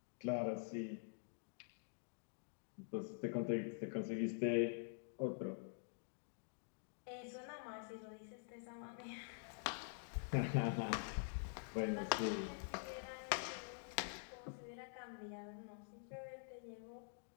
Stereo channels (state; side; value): silent; right; digital silence